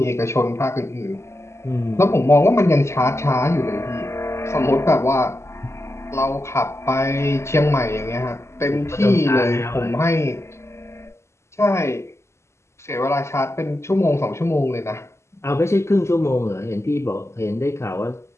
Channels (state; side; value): late; right; 0.13 ms